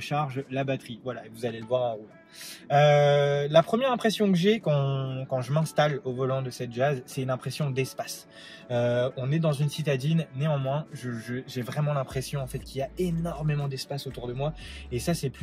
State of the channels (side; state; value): both; identical; correlation 1.00